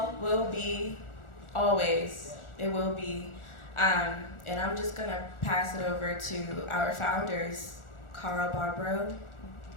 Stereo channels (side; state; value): right; late; 1.4 ms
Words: will be, always, it will be. And I'm just going to pass it over to our founders, Carl Barbro.